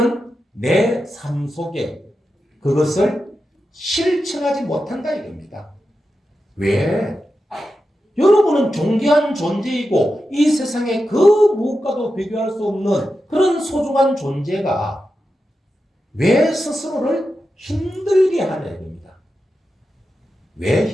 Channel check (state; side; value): normal; both; correlation 0.90